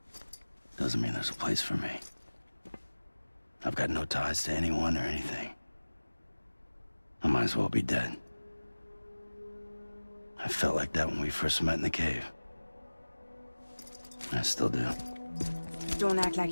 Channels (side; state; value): both; inverted; correlation -1.00